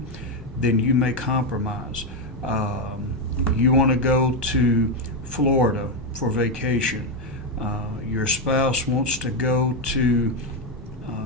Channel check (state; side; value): normal; both; correlation 0.06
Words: then you may compromise. You want to go to Florida for vacation. Your spouse wants to go to